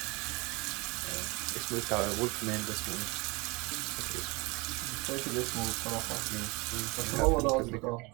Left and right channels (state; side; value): quieter; left; 26.3 dB